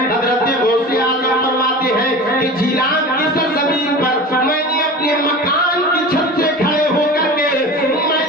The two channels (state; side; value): normal; both; correlation 0.34